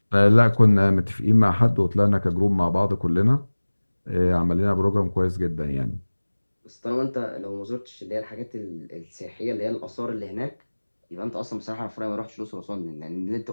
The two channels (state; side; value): inverted; both; correlation -1.00